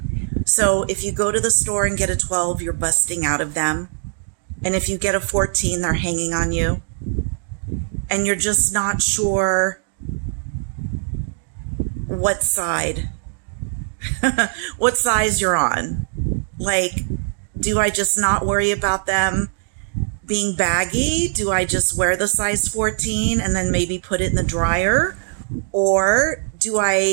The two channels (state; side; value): silent; left; digital silence